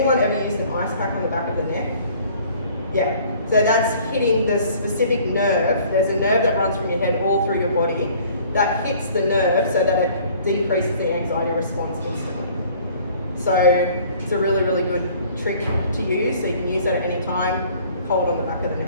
ever used an ice pack on the back of the neck? Yeah, so that's hitting the specific nerve. There's a nerve that runs from your head all through your body that hits the nerve so that it decreases the anxiety response instantly. So it's a really, really good trick to use, so you can use that at any time, hold on the back of the neck.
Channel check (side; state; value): both; inverted; correlation -0.54